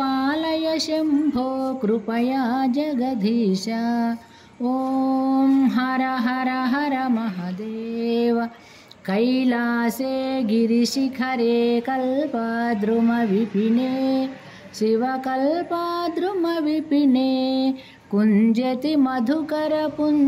शम्भो कृपया जगदीश। ॐ हर हर हर महादेव। कैलासे गिरिशिखरे कल्पद्रुमविपिने शिवकल्पद्रुमविपिने कुञ्जति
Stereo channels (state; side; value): identical; both; correlation 1.00